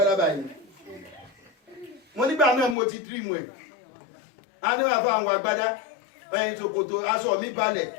báyìí mo nígbà náà mo ti dream ẹ̀ a ní wà fún àwọn agbádá ẹ̀yìn ṣòkòtò aṣọ mi balẹ̀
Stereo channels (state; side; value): drops out; right; at 2.8 s